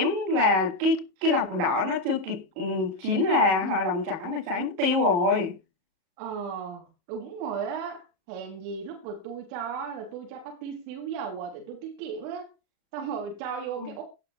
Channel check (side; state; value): left; late; 36 ms